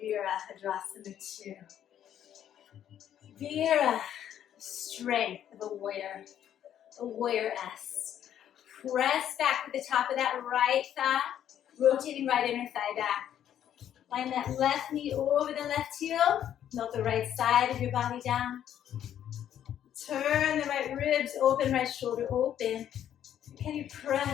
2. Vira, strength of a warrior S. Press back with the top of that right thigh. Rotating right inner thigh back. Line that left knee over the left heel. Melt the right side of your body down. Turn the right ribs open, right shoulder open. Can you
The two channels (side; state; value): right; quieter; 10.4 dB